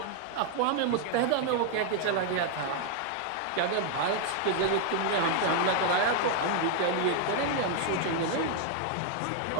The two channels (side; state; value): both; different; correlation 0.00